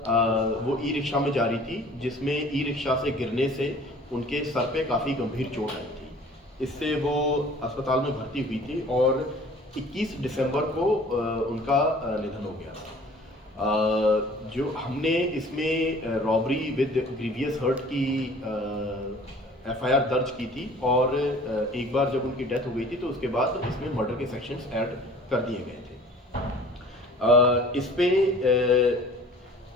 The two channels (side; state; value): both; normal; correlation 0.49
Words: वो ई रिक्शा में जा रही थी जिसमें ई रिक्शा से गिरने से उनके सर पे काफ़ी गंभीर चोट आई थी। इससे वो अस्पताल में भर्ती हुई थी और 21 दिसंबर को उनका निधन हो गया था। जो हमने इसमें रॉबरी विद ग्रीवियस हर्ट की एफआईआर दर्ज की थी और एक बार जब उनकी डेथ हो गई थी तो उसके बाद इसमें मर्डर के सेक्शंस ऐड कर दिए गए थे। इस पे